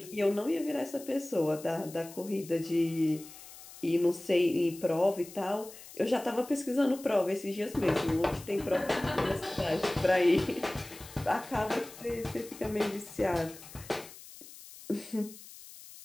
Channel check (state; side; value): noise; left; hiss, 17 dB below the sound